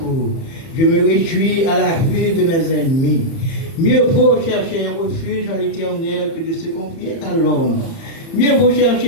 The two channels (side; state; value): right; late; 30 ms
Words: Je me réjouis à la vue de mes ennemis. Mieux vaut chercher un refuge en l'Éternel que de se confier à l'homme. Mieux vaut